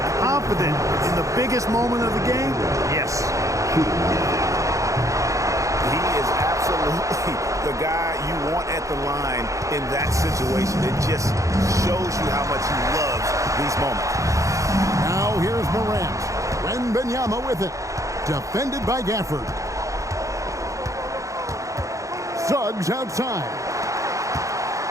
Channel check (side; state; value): left; late; 0.15 ms